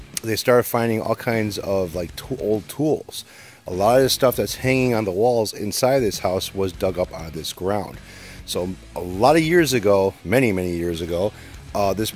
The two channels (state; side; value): identical; both; correlation 1.00